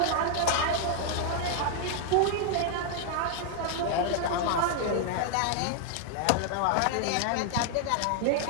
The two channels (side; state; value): both; different; correlation 0.00